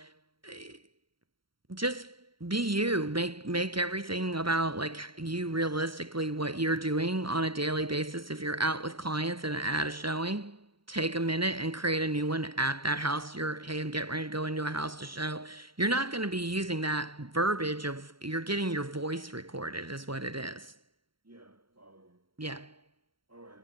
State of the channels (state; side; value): late; left; 0.74 ms